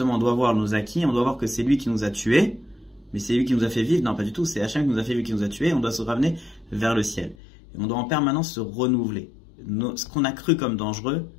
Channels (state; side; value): drops out; right; at 7.4 s